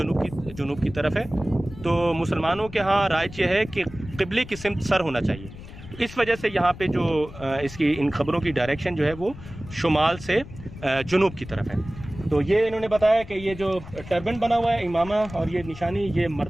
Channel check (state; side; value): noise; left; rumble, 15 dB below the sound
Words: की तरफ है। तो मुसलमानों के यहाँ राइज यह है कि क़िबले की सिमत सर होना चाहिए। तो इस वजह से यहाँ पे जो इसकी इन खबरों की डायरेक्शन जो है वो शुमाल से जुनूब की तरफ है। तो ये इन्होंने बताया कि ये जो टर्बन बना हुआ है, इमामा और ये निशानी, ये